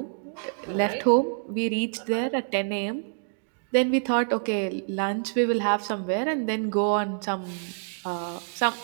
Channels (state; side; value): silent; left; digital silence